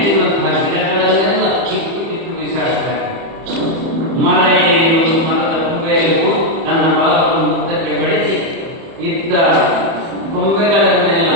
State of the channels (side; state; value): left; late; 30 ms